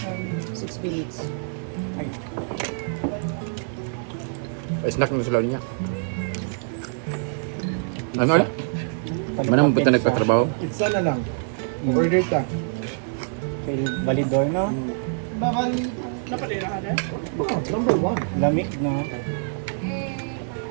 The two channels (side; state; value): left; silent; digital silence